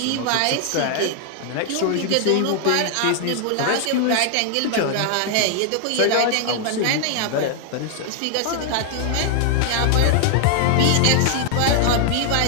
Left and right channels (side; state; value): both; different; correlation 0.00